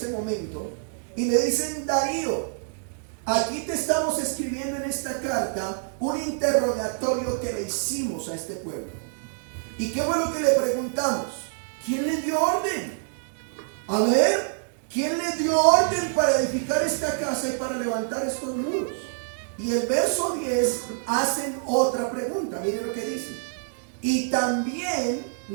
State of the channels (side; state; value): left; silent; digital silence